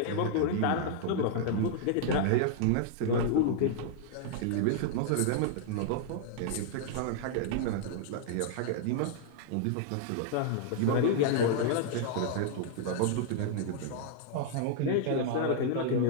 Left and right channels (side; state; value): both; different; correlation -0.01